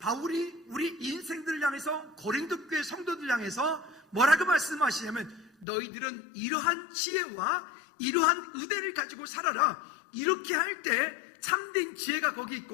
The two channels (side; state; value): right; drops out; at 5.7 s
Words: 우리 인생들을 향해서 고린도 교회 성도들 향해서 뭐라고 말씀하시냐면 너희들은 이러한 지혜와 이러한 의대를 가지고 살아라. 이렇게 할 때 참된 지혜가 거기